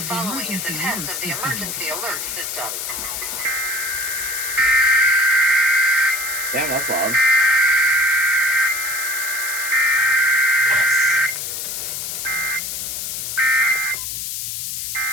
the emergency alert system. Damn, that's loud.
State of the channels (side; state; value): left; noise; hiss, 4 dB below the sound